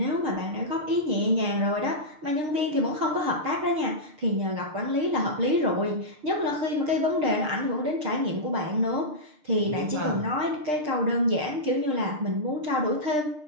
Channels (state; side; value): late; left; 6.6 ms